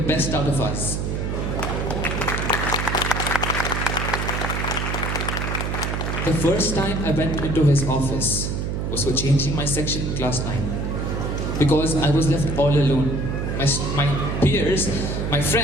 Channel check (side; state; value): right; noise; hum, 2 dB below the sound